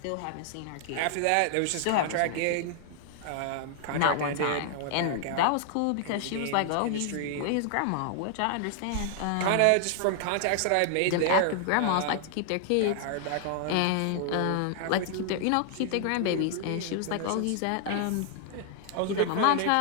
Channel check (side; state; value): both; different; correlation 0.00